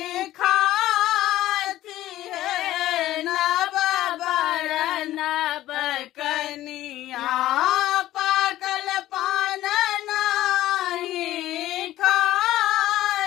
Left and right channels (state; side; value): quieter; right; 14.6 dB